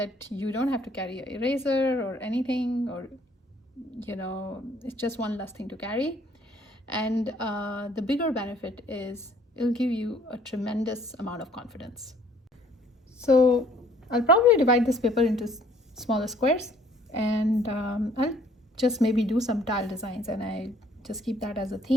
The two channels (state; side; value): normal; both; correlation 0.59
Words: you don't have to carry an eraser or anything, or it's just one less thing to carry. And the bigger benefit is it'll give you a tremendous amount of confidence. So I'll probably divide this paper into smaller squares, and I'll just maybe do some tile designs, and I just keep that as a